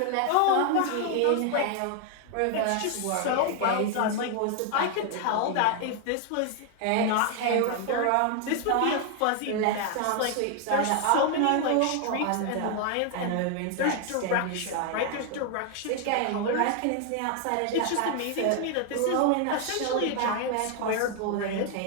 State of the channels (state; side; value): different; both; correlation 0.00